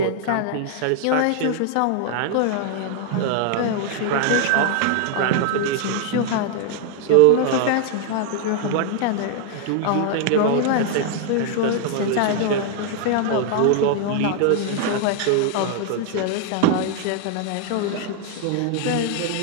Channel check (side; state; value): both; different; correlation 0.00